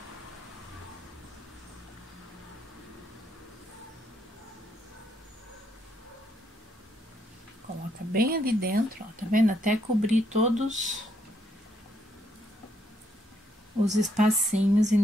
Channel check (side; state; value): both; normal; correlation 0.73